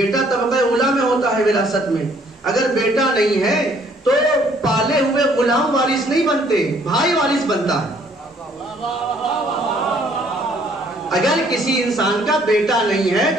طبقہ اولیٰ میں ہوتا ہے وراثت میں, اگر بیٹا نہیں ہے تو پالے ہوئے غلام وارث نہیں بنتے, بھائی وارث بنتا ہے. اگر کسی انسان کا بیٹا نہیں ہے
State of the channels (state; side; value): normal; both; correlation 0.62